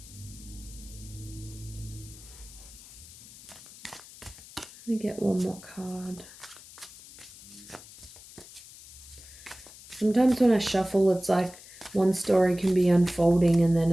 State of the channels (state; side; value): noise; left; hiss, 18 dB below the sound